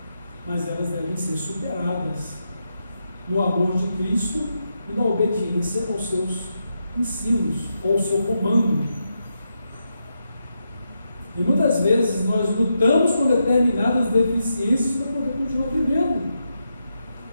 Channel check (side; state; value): both; inverted; correlation -0.84